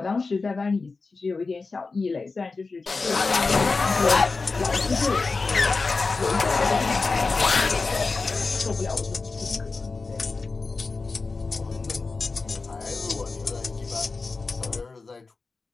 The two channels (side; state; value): right; quieter; 4.1 dB